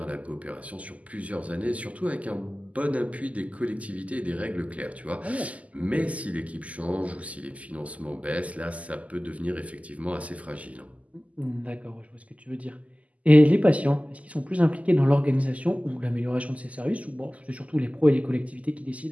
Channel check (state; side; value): late; left; 0.071 ms